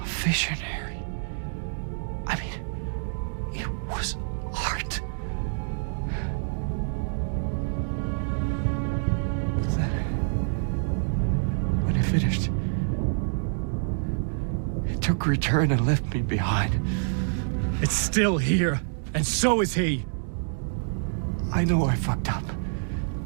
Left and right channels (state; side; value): silent; left; digital silence